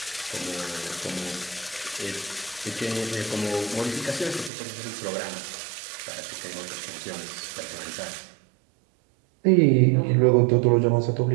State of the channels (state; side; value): drops out; left; at 4.5 s